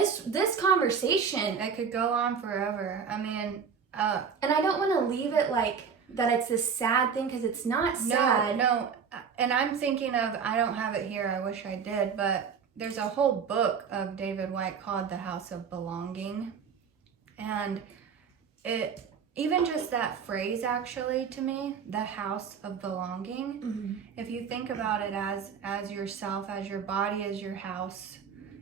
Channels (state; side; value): quieter; left; 6.5 dB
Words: conversation, it could go on forever. I mean, and I don't want to leave it like that it's this sad thing, because it's not sad. No. And I'm thinking of, I don't have it here, I wish I did, but there's a whole book of David White called The House of Belonging. And it, even just that phrase actually, to me, the house of belonging, if you think about it as yourself, as your body is your house,